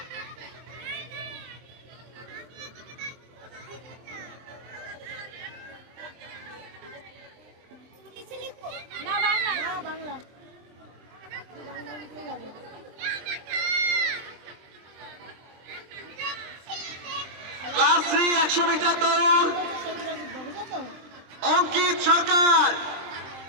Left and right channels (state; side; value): late; left; 23 ms